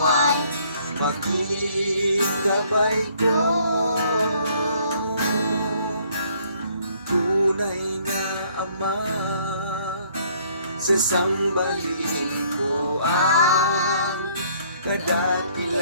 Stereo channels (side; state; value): both; inverted; correlation -0.62